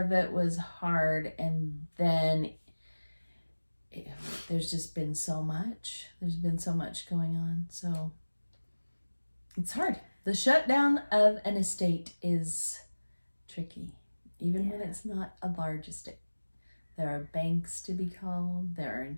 it was hard, and then there's just been so much. There's been so much going on, so it's hard. The shutdown of an estate is tricky, even when it's not a large estate. There are banks to be called. There are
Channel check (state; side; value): inverted; both; correlation -1.00